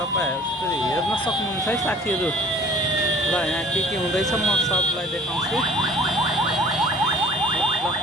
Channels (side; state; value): both; normal; correlation 0.49